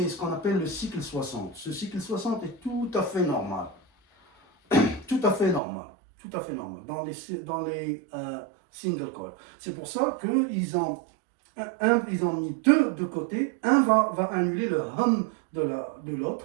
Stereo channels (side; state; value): left; drops out; at 5.6 s